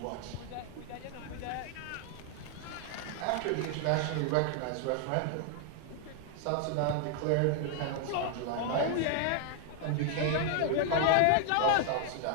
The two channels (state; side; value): different; both; correlation 0.00